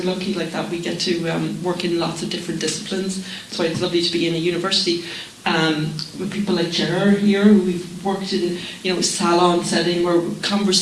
lucky like that. We get to work in lots of different disciplines. That's why it's lovely to be in a university with people like Gerard here, who we've worked in, you know, salon setting, where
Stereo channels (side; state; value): both; identical; correlation 1.00